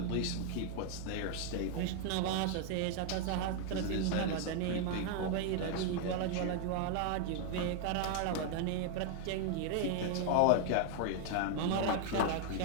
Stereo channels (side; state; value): both; different; correlation 0.00